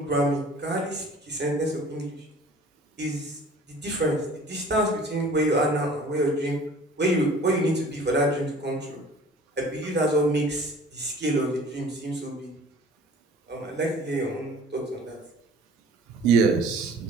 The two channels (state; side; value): normal; both; correlation 0.48